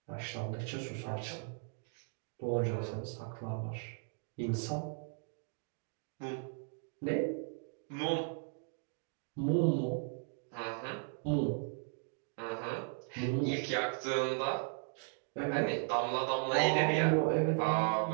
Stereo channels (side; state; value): left; silent; 53 dB below the other